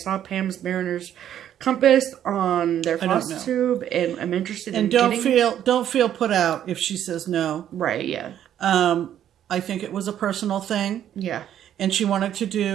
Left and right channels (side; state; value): left; quieter; 10.6 dB